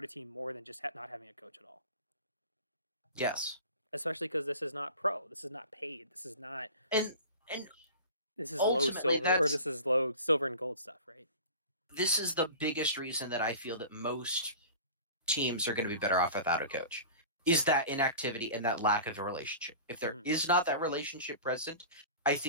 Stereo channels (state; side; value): inverted; both; correlation -0.38